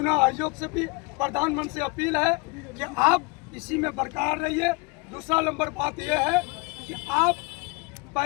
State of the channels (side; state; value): right; quieter; 28.2 dB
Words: आयोग से भी, प्रधानमंत्री से अपील है कि आप इसी में बरकरार रहिए। दूसरा नंबर बात यह है कि आप